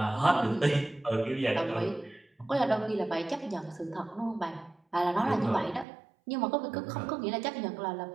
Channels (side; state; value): left; drops out; at 5.9 s